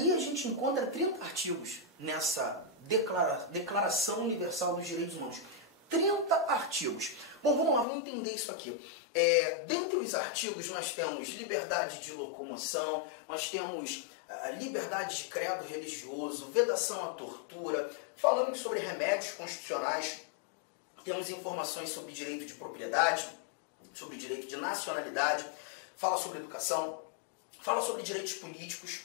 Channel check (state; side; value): drops out; right; at 7.9 s